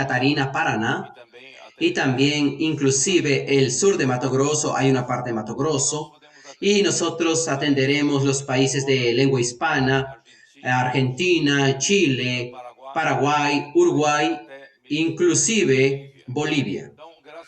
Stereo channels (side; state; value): both; identical; correlation 1.00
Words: Paraná, y también inclusive el sur de Mato Grosso, hay una parte de Mato Grosso, y nosotros atenderemos los países de lengua hispana, Argentina, Chile, Paraguay, Uruguay, inclusive Bolivia.